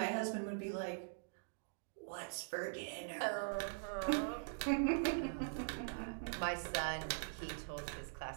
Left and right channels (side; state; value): left; silent; digital silence